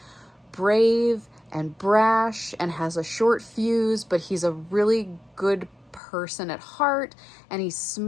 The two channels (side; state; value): right; drops out; at 6.0 s